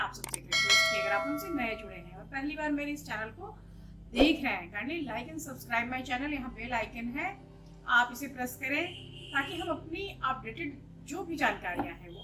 सबसे रिक्वेस्ट कि अगर आप हमसे नए जुड़े हैं और पहली बार मेरे इस चैनल को देख रहे हैं, kindly like and subscribe my channel. यहाँ बेल आइकन है, आप इसे प्रेस करें ताकि हम अपनी अपडेटेड जो भी जानकारियाँ हैं वो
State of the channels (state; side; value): identical; both; correlation 1.00